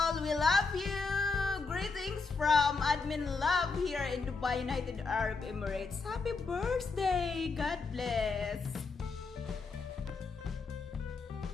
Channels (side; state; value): right; quieter; 4.4 dB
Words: We love you. Greetings from Admin Love here in Dubai, United Arab Emirates. Happy birthday! God bless!